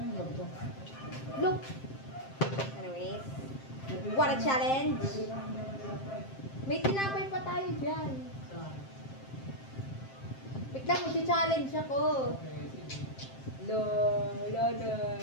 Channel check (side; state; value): right; late; 7.6 ms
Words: ganito? Look! Anyways, water challenge. May tinapay pa tayo dyan. Wait lang, magcha-challenge ako.